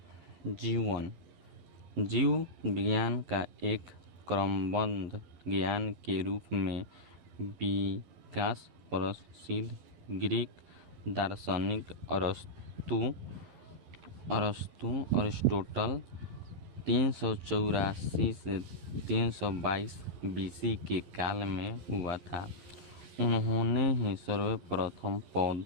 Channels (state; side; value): late; left; 11 ms